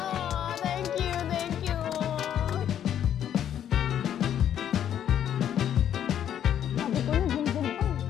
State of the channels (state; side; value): quieter; right; 10.0 dB